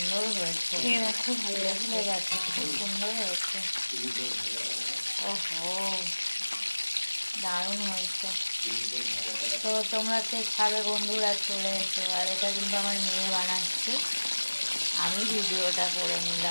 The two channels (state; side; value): inverted; both; correlation -1.00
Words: হয়েছে, খুব ভালো লেগেছে, খুব সুন্দর হয়েছে। ওহো, দারুণ হয়েছে। তো তোমরা কে খাবে বন্ধুরা চলে এসো। আর এটা কিন্তু আমার মেয়ে বানাচ্ছে, আমি ভিডিওটা করে